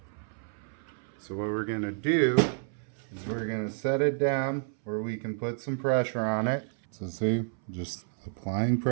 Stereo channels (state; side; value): silent; left; 58 dB below the other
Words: So what we're going to do is we're going to set it down where we can put some pressure on it. So see, just applying